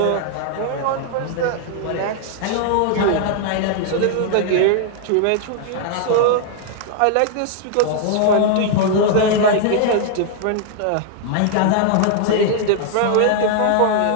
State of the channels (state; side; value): different; both; correlation 0.00